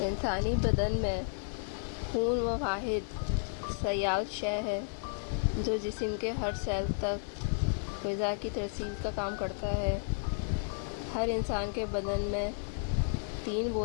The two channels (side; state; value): right; silent; digital silence